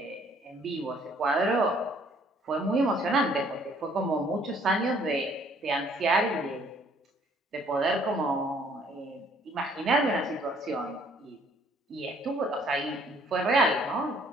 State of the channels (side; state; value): both; normal; correlation 0.61